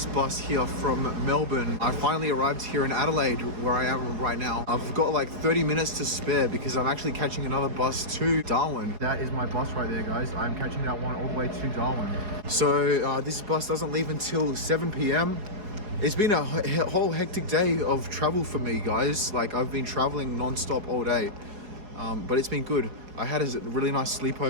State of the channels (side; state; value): left; late; 4.7 ms